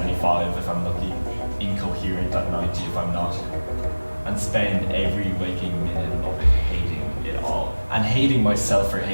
if I'm lucky, coherent at 90 if I'm not. And spend every waking minute of it hating it all. And hating myself for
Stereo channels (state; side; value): inverted; both; correlation -1.00